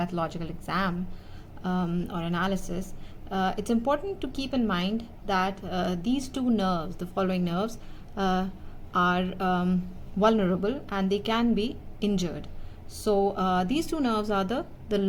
exam or analysis, it's important to keep in mind that these two nerves, the following nerves, are vulnerable and they can be injured. So these two nerves are the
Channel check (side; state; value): both; identical; correlation 1.00